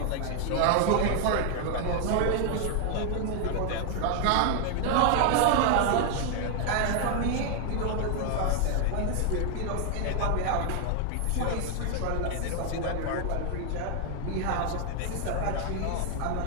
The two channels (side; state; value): both; different; correlation 0.00